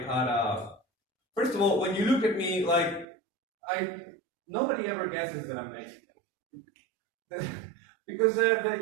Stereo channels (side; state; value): left; drops out; at 3.1 s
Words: had first of all, when you look at me, nobody ever guesses that I'm Mexican. Because